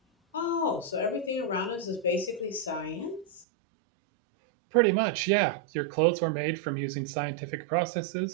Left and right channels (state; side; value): drops out; left; at 3.5 s